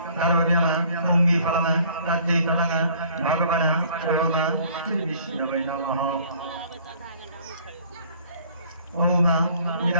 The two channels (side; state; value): both; inverted; correlation -0.55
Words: द्रव्यम पुंगीफलम तज्जैतंग भगवान ओम श्री विष्णवे नमः। ओम